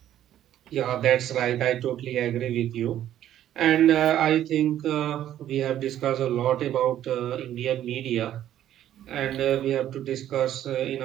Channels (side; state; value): left; quieter; 11.7 dB